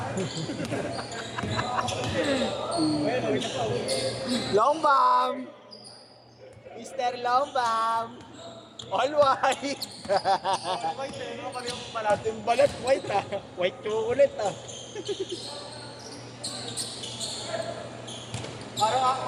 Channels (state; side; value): identical; both; correlation 1.00